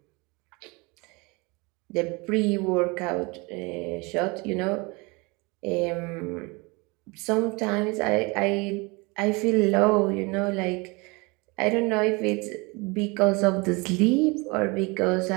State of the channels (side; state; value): left; quieter; 27.1 dB